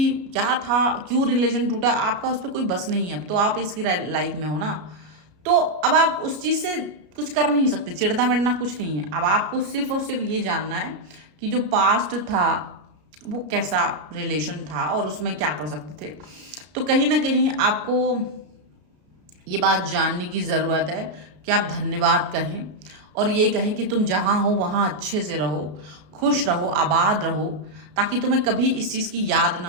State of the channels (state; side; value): late; left; 33 ms